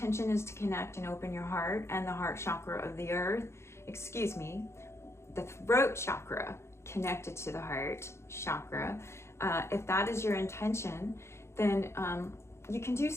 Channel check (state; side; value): late; right; 0.13 ms